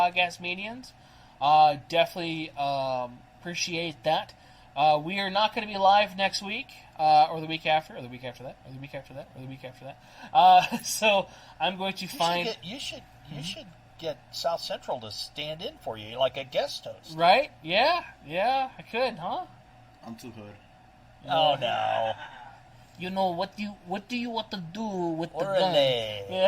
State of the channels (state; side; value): identical; both; correlation 1.00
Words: mediums, definitely appreciate that. We are not going to be live next week, or the week after, or the week after that, or the week after that, or the week after that. So I'm going to find... You should get South Central to stand in for you, like a guest host. Right? Yeah, I could, huh? I'm too hood. Oh, no. What do you want to do with the gun? Orale.